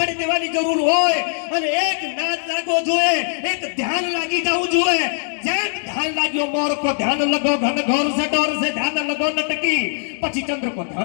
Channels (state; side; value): silent; right; 65 dB below the other